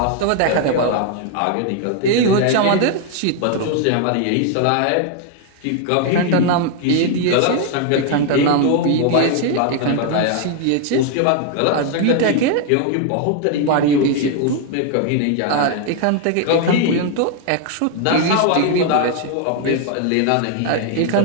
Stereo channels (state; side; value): different; both; correlation 0.00